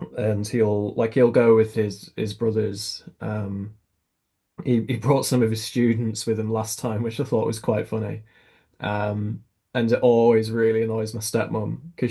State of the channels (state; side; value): identical; both; correlation 1.00